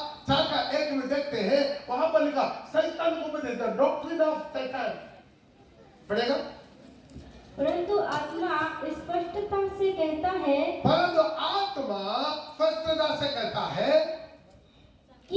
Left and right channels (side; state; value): both; identical; correlation 1.00